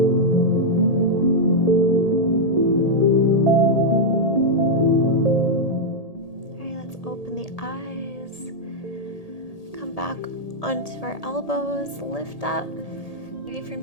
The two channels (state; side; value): late; right; 1.8 ms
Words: All right, let's open the eyes. Come back onto our elbows, lift up. Maybe from